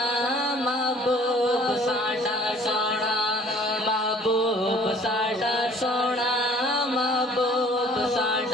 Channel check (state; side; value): normal; both; correlation 0.53